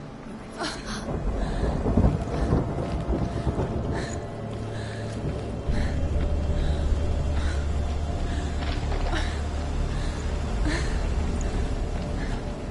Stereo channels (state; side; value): identical; both; correlation 1.00